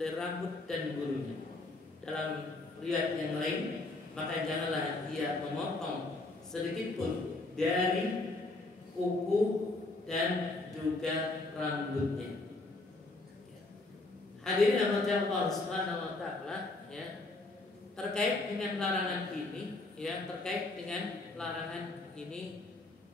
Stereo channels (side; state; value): right; quieter; 3.0 dB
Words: rambut dan bulunya. Dalam riwayat yang lain, maka janganlah dia memotong sedikit pun dari kuku dan juga rambutnya. Hadirin rahmati Allah Subhanahu wa taala, ya, terkait dengan larangan ini, ya, terkait dengan larangan ini,